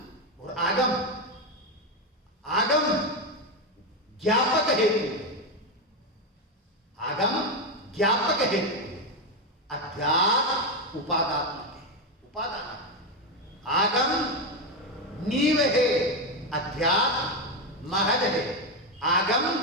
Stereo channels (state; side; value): normal; both; correlation 0.09